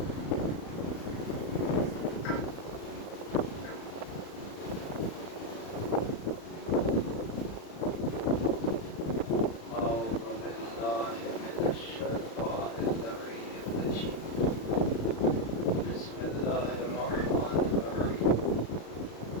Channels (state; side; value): late; right; 35 ms